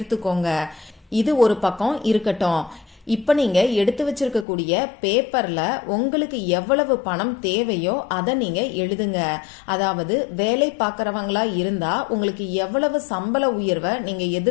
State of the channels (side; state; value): right; drops out; at 4.5 s